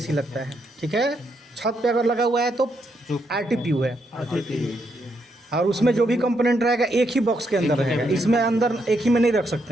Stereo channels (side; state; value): both; normal; correlation 0.78